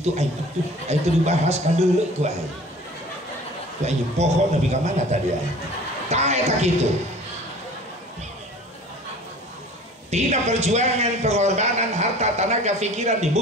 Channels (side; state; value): both; normal; correlation 0.45